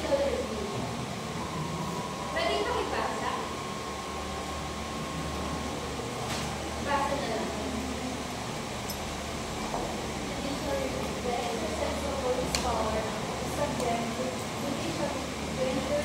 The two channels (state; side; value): identical; both; correlation 1.00